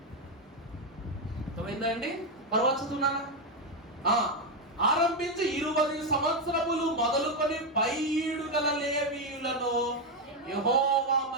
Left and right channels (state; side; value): normal; both; correlation 0.05